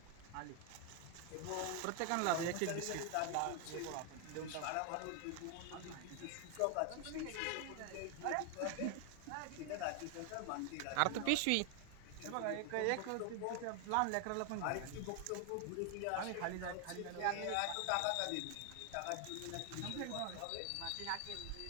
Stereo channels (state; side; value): different; both; correlation 0.00